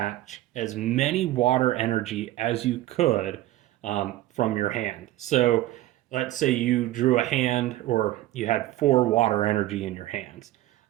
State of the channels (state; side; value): quieter; left; 15.4 dB